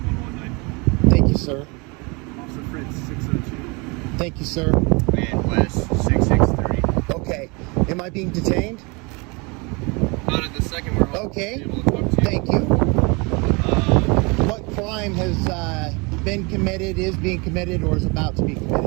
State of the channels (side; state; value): left; quieter; 28.8 dB